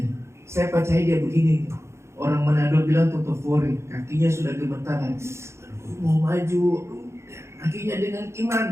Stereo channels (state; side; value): late; left; 0.13 ms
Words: Saya percaya dia begini. Orang Manado bilang totofori, kakinya sudah gemetaran. Mau maju, akhirnya dengan